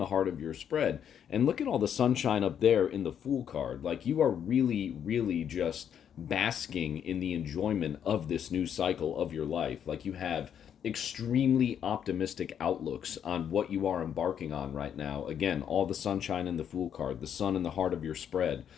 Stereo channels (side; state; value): right; quieter; 8.8 dB